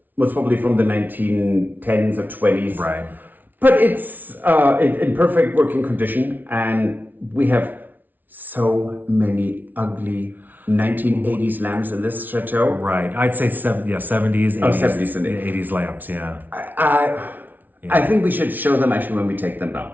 Most probably from the 1910s or 20s. Right. But it's in perfect working condition, and we have so many ugly 1980s lamps in this chateau. Right. I'd say 70s, 80s, 70s and 80s lamps, yeah. I think we should show them actually when we take them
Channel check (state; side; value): late; left; 0.084 ms